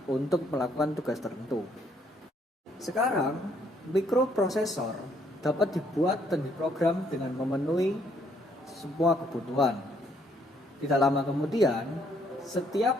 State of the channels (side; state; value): both; normal; correlation 0.68